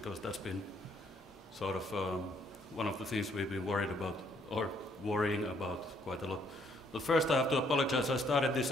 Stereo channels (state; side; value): normal; both; correlation 0.68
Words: that's been sort of one of the things we've been worried about, or worrying about quite a lot. But first I have to apologize. I started this